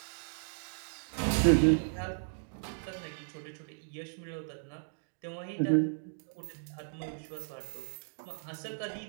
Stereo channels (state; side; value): silent; left; digital silence